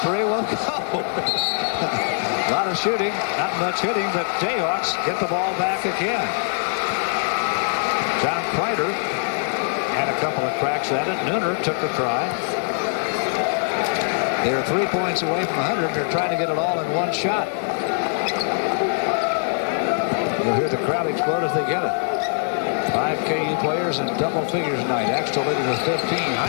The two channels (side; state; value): right; silent; digital silence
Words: 3 won't go. A lot of shooting, not much hitting, but Jayhawks get the ball back again. John Kreider had a couple of cracks at it. Nooner took the try. They're 3 points away from 100. They're trying to get it all in one shot. You'll hear the crowd explode if they get it. 5 KU players in double figures tonight. Axtell leading with 15.